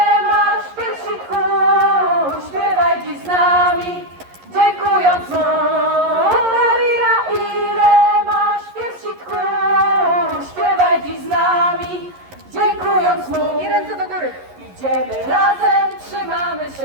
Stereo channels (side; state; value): left; late; 11 ms